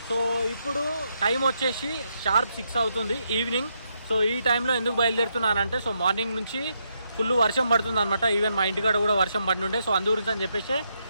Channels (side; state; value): both; inverted; correlation -0.79